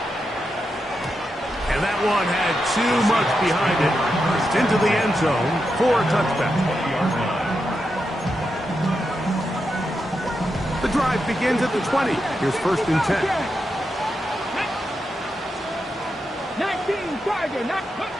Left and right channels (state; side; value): normal; both; correlation 0.86